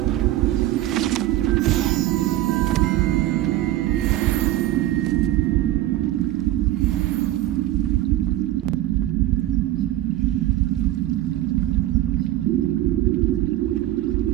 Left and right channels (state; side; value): quieter; left; 14.8 dB